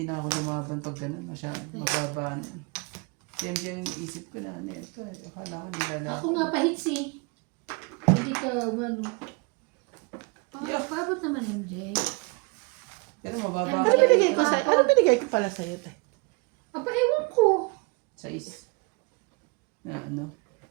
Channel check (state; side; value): quieter; left; 28.9 dB